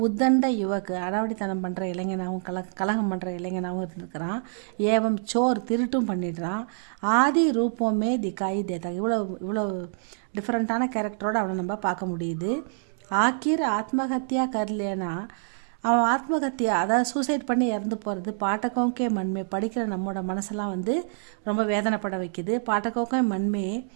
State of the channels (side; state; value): left; silent; digital silence